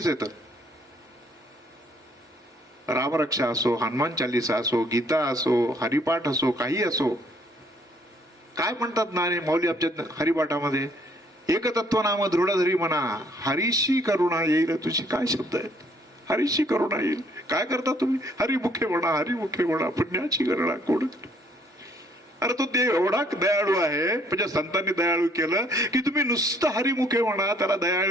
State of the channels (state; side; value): normal; both; correlation 0.64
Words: येतं. रामरक्षा असो, हनुमान चालिसा असो, गीता असो, हरिपाठ असो, काही असो. काय म्हणतात ना माऊली आमच्या हरिपाठामध्ये, एकतत्व नाम दृढधरी म्हणा, हरीशी करुणा येईल तुझी. काय शब्द आहेत? हरीशी करुणा येईल. काय करता तुम्ही? हरिमुखे म्हणा, हरिमुखे म्हणा, पुण्याची गणना कोण. अरे तो देव एवढा दयाळू आहे, म्हणजे संतांनी दयाळू केलं की तुम्ही नुसतं हरिमुखे म्हणा, त्याला